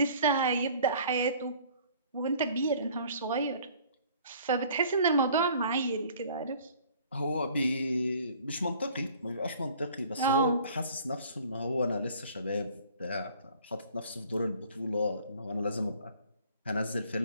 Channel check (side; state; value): both; inverted; correlation -0.53